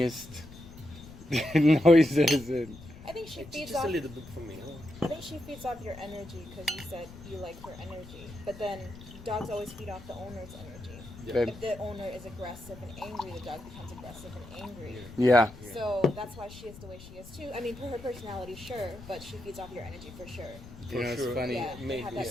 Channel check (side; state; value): left; noise; rumble, 16 dB below the sound